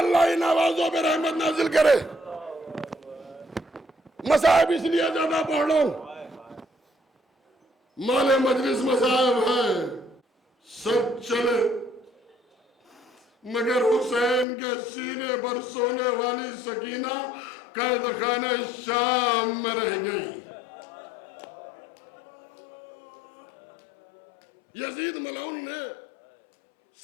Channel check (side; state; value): right; drops out; at 14.5 s